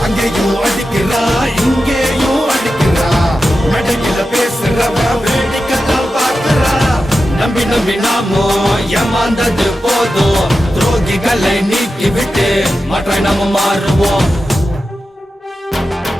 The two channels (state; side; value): normal; both; correlation 0.91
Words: அங்கேயும் அடிக்கிறா இங்கேயும் அடிக்கிறா. மேடையில பேசுறவ வேடிக்கைத்தான் பார்க்கிறா. நம்பி நம்பி நாமோ ஏமாந்தது போதும். துரோகிகளை நீக்கி விட்டு மற்ற நாம மாறுவோம்.